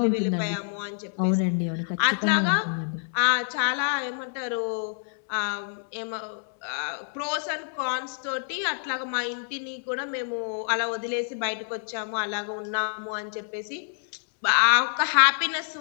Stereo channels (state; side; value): silent; right; digital silence